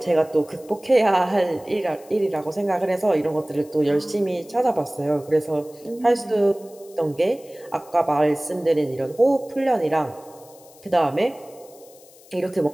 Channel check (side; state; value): left; noise; hiss, 25 dB below the sound